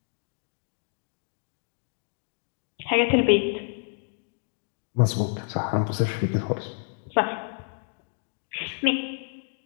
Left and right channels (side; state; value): right; silent; digital silence